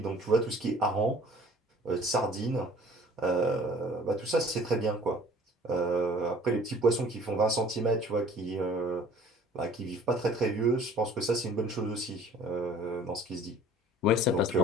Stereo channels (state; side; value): normal; both; correlation 0.50